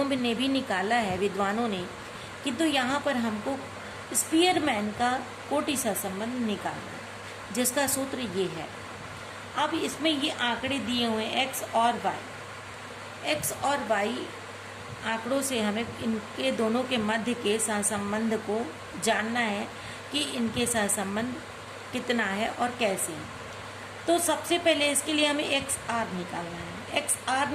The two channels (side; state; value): both; identical; correlation 1.00